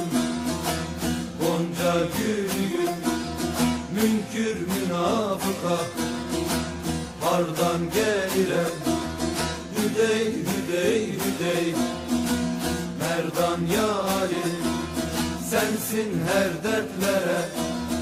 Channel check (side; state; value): both; identical; correlation 1.00